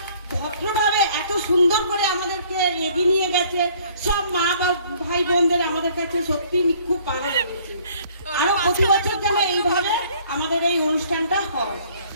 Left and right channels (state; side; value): inverted; both; correlation -0.58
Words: ভদ্রভাবে এত সুন্দর করে আমাদেরকে এগিয়ে নিয়ে গেছে সব মা বা ভাই বোনদের, আমাদের কাছে সত্যি খুব ভালো লেগেছে। আরো প্রতি বছর যেন এইভাবে আমাদের এই অনুষ্ঠানটা হয়।